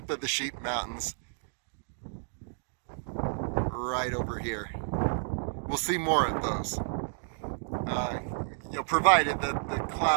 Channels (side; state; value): left; silent; digital silence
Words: of the Sheep Mountains right over here. We'll see more of those. Provided that the